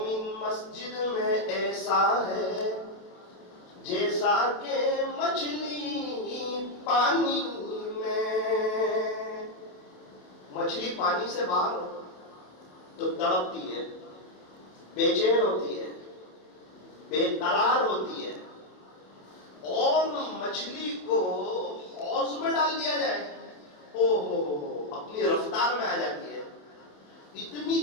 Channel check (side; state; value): right; late; 28 ms